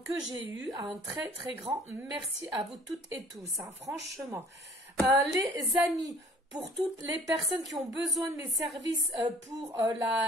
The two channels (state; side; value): normal; both; correlation 0.52